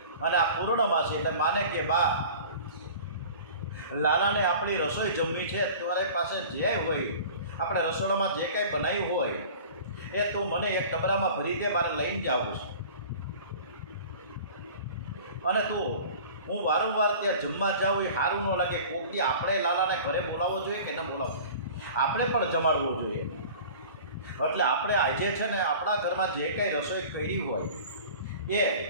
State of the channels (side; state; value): both; inverted; correlation -0.41